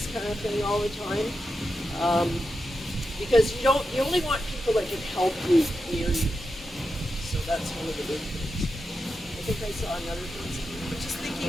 kind of thing all the time. Because you only want people that can help you near you. So that's one of the big things. I think I saw another thing. I'm just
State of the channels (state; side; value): normal; both; correlation 0.89